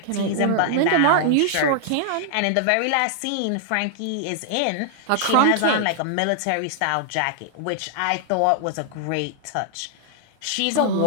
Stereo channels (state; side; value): different; both; correlation 0.00